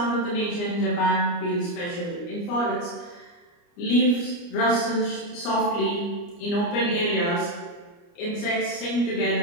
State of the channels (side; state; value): right; late; 29 ms